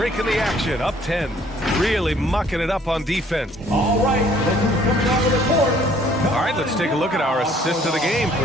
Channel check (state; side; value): normal; both; correlation 0.59